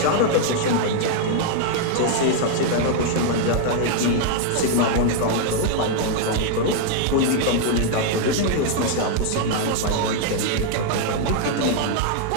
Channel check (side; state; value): both; different; correlation 0.00